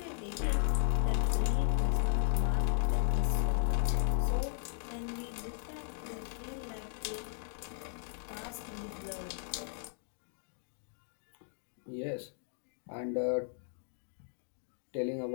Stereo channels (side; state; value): right; silent; digital silence